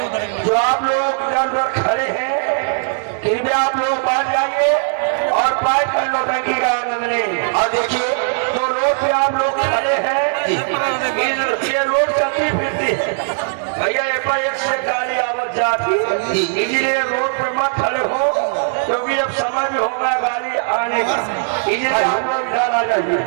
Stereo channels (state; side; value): silent; left; digital silence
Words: जो आप लोग इधर उधर खड़े हैं कृपया आप लोग बैठ जाइए और बैठ कर नौटंकी का आनंद लें। और देखिए जो रोड पे आप लोग खड़े हैं, ये रोड चलती फिरती है भैया, ये पर एक से गाड़ी आवत जाती, इसलिए रोड पे मत खड़े हो, क्योंकि अब समय भी होगा गाड़ी आने का, इसलिए आप लोग इधर आ जाइए।